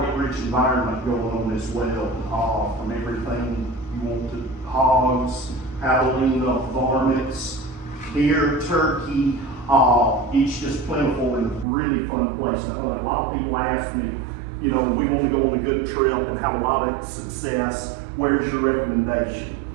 environment going on as well, from everything you want to hogs, javelina, varmints, deer, turkey. It's just plentiful and a really fun place to hunt. A lot of people ask me, you know, we want to go on a good trip and have a lot of success. Where's your recommendation?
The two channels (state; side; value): drops out; left; at 11.7 s